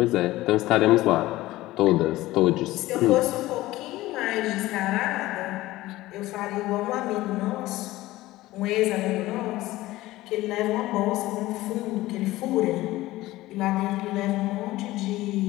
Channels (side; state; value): right; quieter; 17.4 dB